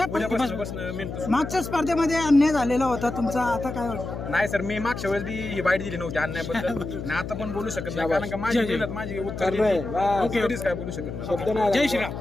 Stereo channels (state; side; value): noise; left; hum, 7 dB below the sound